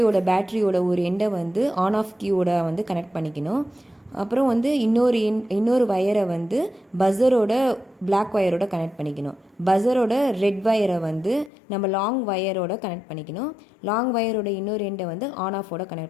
பேட்டரியோட ஒரு எண்டை வந்து ஆன் ஆஃப் கீயோட வந்து கனெக்ட் பண்ணிக்கணும். அப்புறம் வந்து இன்னொரு வயரை வந்து பஸ்ஸரோட பிளாக் வயரோட கனெக்ட் பண்ணிக்கணும். பஸ்ஸரோட ரெட் வயரை வந்து நம்ம லாங் வயரோட கனெக்ட் பண்ணிக்கணும். லாங் வயரோட இன்னொரு எண்டை வந்து ஆன் ஆஃபோட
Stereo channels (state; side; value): drops out; right; at 11.5 s